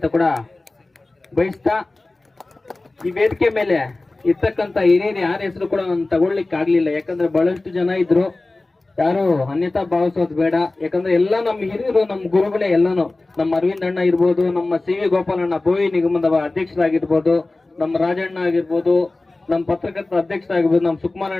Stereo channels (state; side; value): quieter; right; 3.1 dB